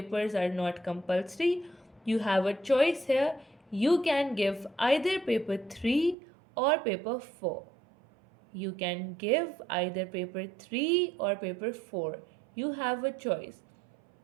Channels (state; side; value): drops out; left; at 6.2 s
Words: are not compulsory. You have a choice here. You can give either paper 3 or paper 4. You can give either paper 3 or paper 4. You have a choice.